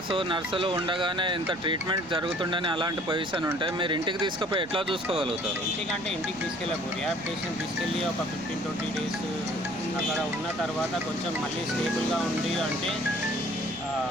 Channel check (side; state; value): right; noise; rumble, 21 dB below the sound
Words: నర్సులు ఉండగానే ఇంత ట్రీట్మెంట్ జరుగుతుండని అలాంటి పొజిషన్ ఉంటే మీరు ఇంటికి తీసుకుపోయి ఎట్లా చూసుకోగలుగుతారు? ఇంటికి తీసుకెళ్ళము. రిహాబిలిటేషన్ తీసుకెళ్ళి ఒక 15-20 డేస్ అక్కడ ఉన్న తర్వాత కొంచెం మళ్ళీ స్టేబుల్గా ఉంది అంటే